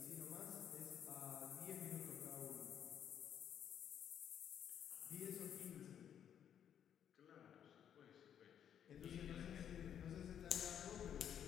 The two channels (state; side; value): quieter; right; 9.2 dB